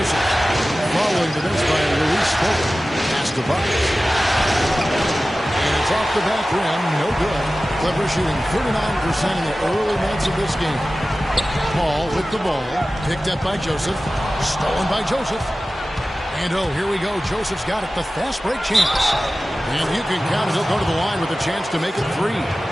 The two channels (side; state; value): both; normal; correlation 0.96